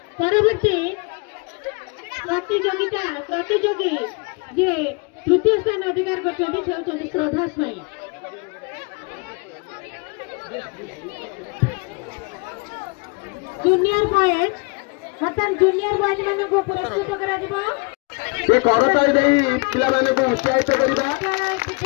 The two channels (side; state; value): right; quieter; 30.7 dB